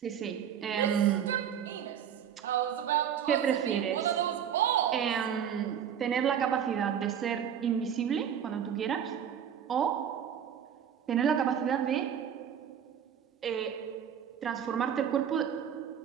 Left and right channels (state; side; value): quieter; left; 8.7 dB